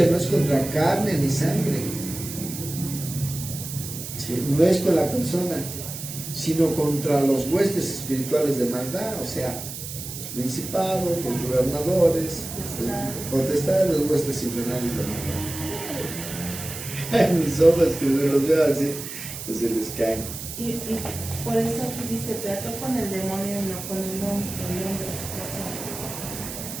no es contra carne ni sangre. ¿Sí? No es con la persona, sino contra los huestes espirituales de maldad, o sea, los principados, los gobernadores, potestades, los huestes infernales de maldad. Mis ojos que me los veo así, pues se les caen. Por eso aquí dice, trató con el demonio y no con el hombre. O sea,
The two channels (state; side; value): noise; right; hiss, 9 dB below the sound